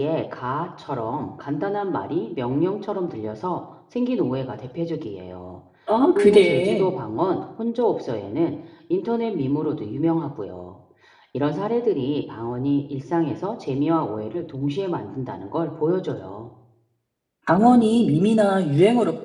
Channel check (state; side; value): identical; both; correlation 1.00